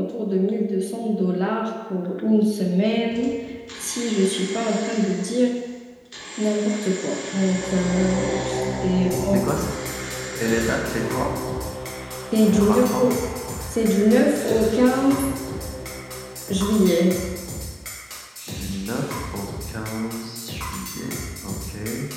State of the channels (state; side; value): identical; both; correlation 1.00